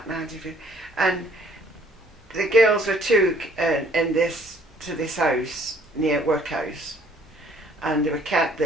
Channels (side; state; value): both; normal; correlation 0.61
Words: 1950s, and the girls were took to this house near workhouse. And they were kept